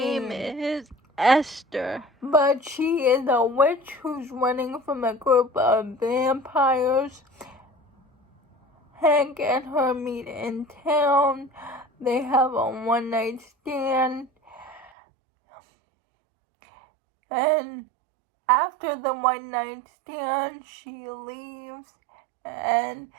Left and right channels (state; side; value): drops out; left; at 14.9 s